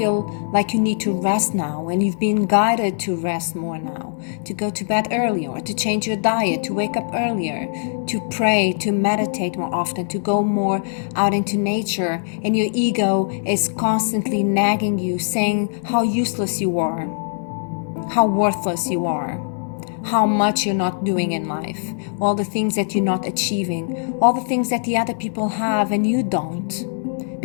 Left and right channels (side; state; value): right; silent; 65 dB below the other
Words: like you need to rest now, and you've been guided to rest more now, to go to bed earlier, to change your diet, to wake up earlier, to pray, to meditate more often, to go more out into nature. And your ego is constantly nagging you, saying how useless you are, how worthless you are, how much you're not doing in life, all the things that you're not achieving, all the things that the other people have and you don't,